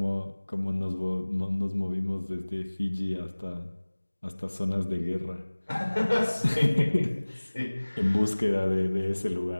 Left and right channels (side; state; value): both; inverted; correlation -1.00